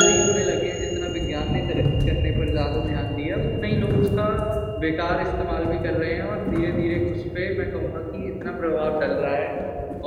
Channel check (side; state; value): both; identical; correlation 1.00